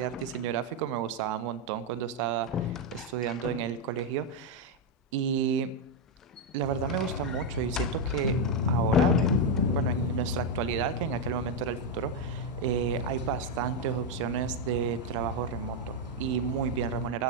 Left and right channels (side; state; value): both; normal; correlation 0.02